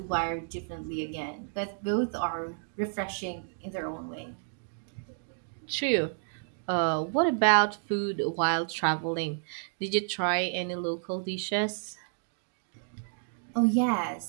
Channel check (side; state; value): left; silent; digital silence